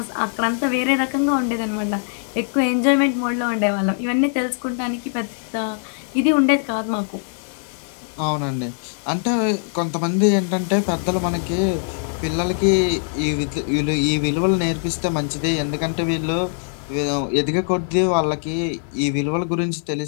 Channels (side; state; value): right; silent; 64 dB below the other